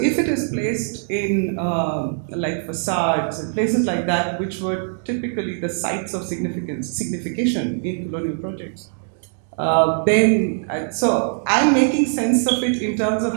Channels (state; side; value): silent; left; digital silence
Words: it is placed in like facades and places like that, which were typically the sites of signification in colonial projects, so I'm making sense of it in terms of